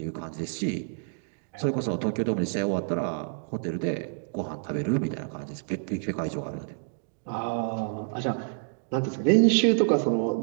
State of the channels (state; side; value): silent; left; digital silence